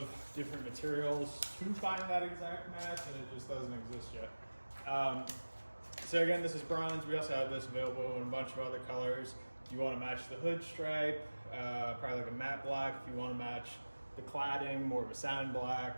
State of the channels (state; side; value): inverted; both; correlation -1.00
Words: different materials to find that exact match, and it just doesn't exist yet. So again, this is bronze. We also have this available in a bunch of other colors. If you want to match the hood stripe, probably like a matte black. If you want to match the cladding, more of a sand